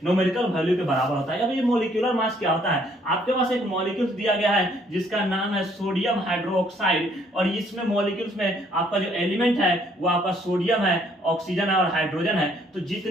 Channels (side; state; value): both; normal; correlation 0.65